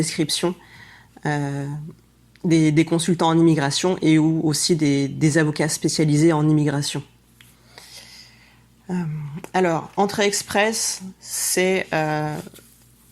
des consultants en immigration et ou aussi des avocats spécialisés en immigration. Alors, Entrée Express, c'est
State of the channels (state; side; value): identical; both; correlation 1.00